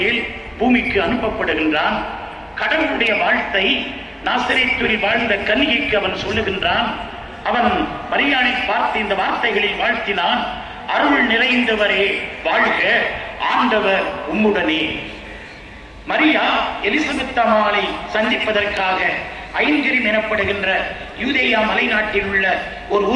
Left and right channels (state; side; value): identical; both; correlation 1.00